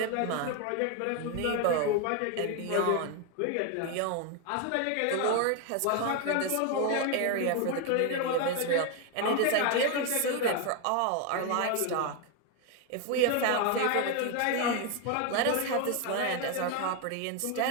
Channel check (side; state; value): both; different; correlation 0.01